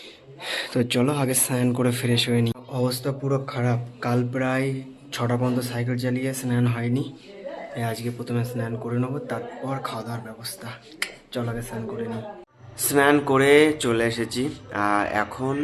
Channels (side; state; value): both; identical; correlation 1.00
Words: তো চলো আগে স্নান করে ফ্রেশ হয়ে নিই। অবস্থা পুরো খারাপ, কাল প্রায় 6টা পর্যন্ত সাইকেল চালিয়ে স্নান হয়নি। আজকে প্রথমে স্নান করে নেবো, তারপর খাওয়া দাওয়ার ব্যবস্থা। চলো আগে স্নান করে নিই। স্নান করে চলে এসেছি, আর এখন